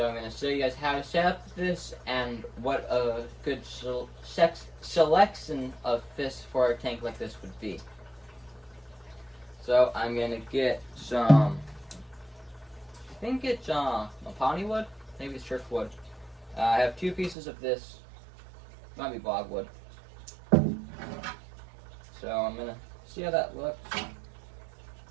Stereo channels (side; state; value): left; drops out; at 17.4 s